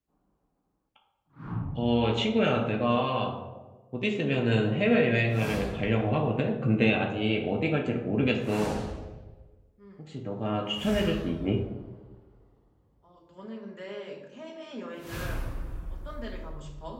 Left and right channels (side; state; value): both; identical; correlation 1.00